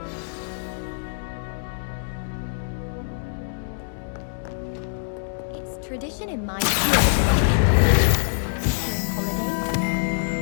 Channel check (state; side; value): silent; right; digital silence